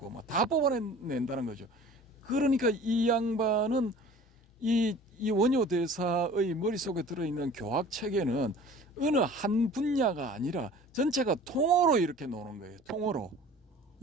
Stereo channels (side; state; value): both; normal; correlation 0.45